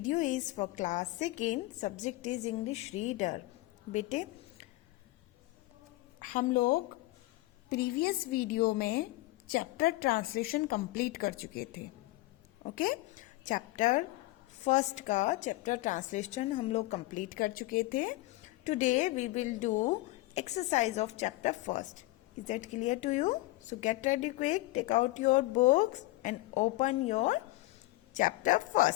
is for class 2nd, subject is English reader. बेटे हम लोग previous video में chapter translation complete कर चुके थे. Okay, chapter first का chapter translation हम लोग कंप्लीट कर चुके थे. Today we will do exercise of chapter first. Is that clear to you? So get ready quick, take out your books and open your chapter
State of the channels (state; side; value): quieter; right; 19.6 dB